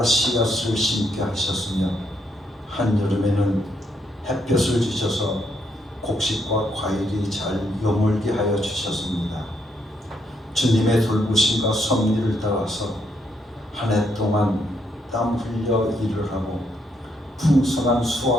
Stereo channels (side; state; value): both; normal; correlation 0.75